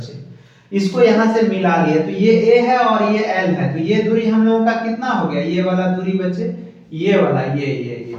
इसको यहां से मिला लिए, तो ये ए है और ये एल है, तो ये दूरी हम लोगों का कितना हो गया, ये वाला दूरी बच्चे, ये वाला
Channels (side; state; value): both; identical; correlation 1.00